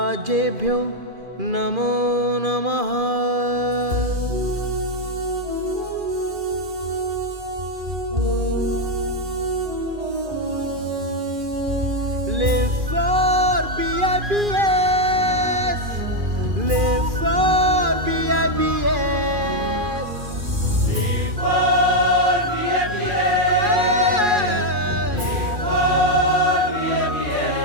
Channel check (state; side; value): late; left; 2.4 ms